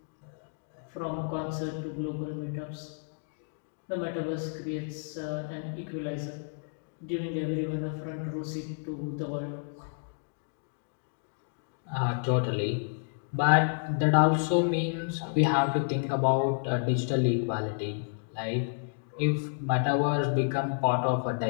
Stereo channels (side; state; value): right; silent; digital silence